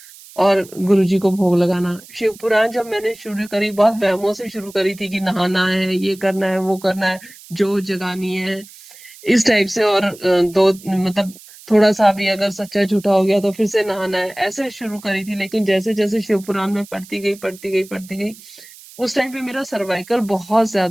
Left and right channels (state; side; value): noise; right; hiss, 20 dB below the sound